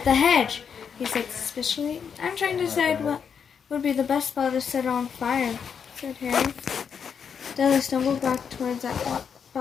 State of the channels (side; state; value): right; quieter; 7.0 dB